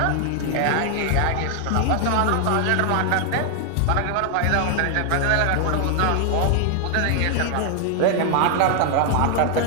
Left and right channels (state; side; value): different; both; correlation 0.00